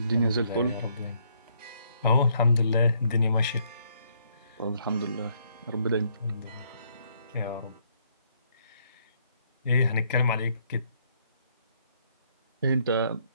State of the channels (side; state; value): both; inverted; correlation -0.70